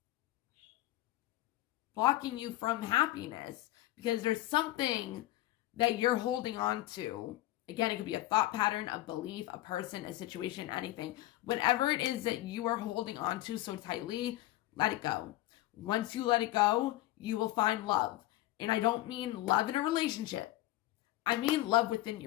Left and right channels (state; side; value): quieter; right; 16.5 dB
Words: blocking you from happiness. Because there's something that you're holding on to. Again, it could be a thought pattern, a belief, a person, a situation, anything. Whatever it is that you are holding on to so tightly, let it go. Once you let it go, you will find love. And I don't mean love in a relationship. I mean love within